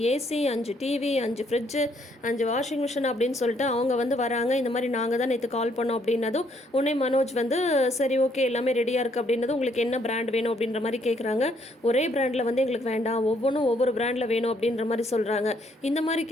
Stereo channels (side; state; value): both; normal; correlation 0.69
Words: AC, 5 TV, 5 fridge, 5 washing machine அப்படின்னு சொல்லிட்டு அவங்க வந்து வராங்க. இந்த மாதிரி நாங்கள் தான் நேற்று கால் பண்ணோம் அப்படின்னதும் உடனே மனோஜ் வந்து சரி ஓகே எல்லாமே ரெடியாக இருக்குது அப்படின்னதும் உங்களுக்கு என்ன பிராண்ட் வேணும் அப்படின்ற மாதிரி கேட்குறாங்க. ஒரே பிராண்டில் வந்து எங்களுக்கு வேண்டாம், ஒவ்வொன்றும் ஒவ்வொரு பிராண்டில் வேணும் அப்படின்ற மாதிரி சொல்கிறாங்க. இந்த மாதிரி